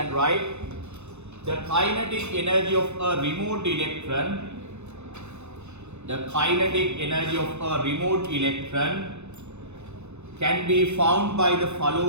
right. The kinetic energy of a removed electron. The kinetic energy of a removed electron can be found by the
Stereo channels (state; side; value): late; left; 0.82 ms